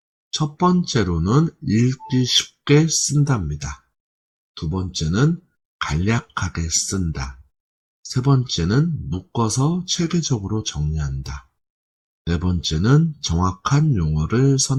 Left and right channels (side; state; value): both; identical; correlation 1.00